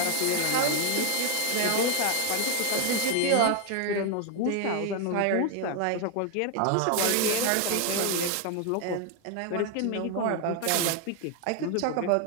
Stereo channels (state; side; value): different; both; correlation 0.00